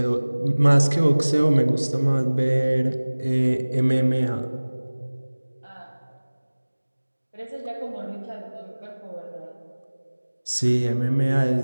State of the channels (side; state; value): both; inverted; correlation -1.00